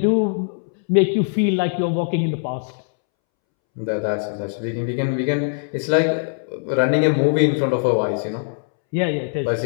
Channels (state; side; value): silent; right; 65 dB below the other